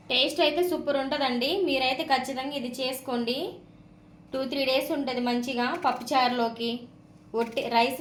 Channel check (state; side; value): identical; both; correlation 1.00